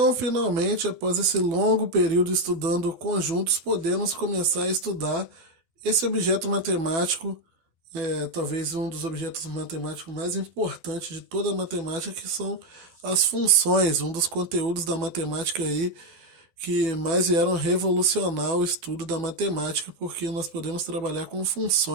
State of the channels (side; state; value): left; late; 12 ms